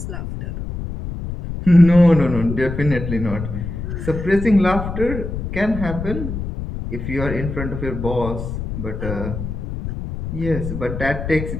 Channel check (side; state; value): left; noise; rumble, 6 dB below the sound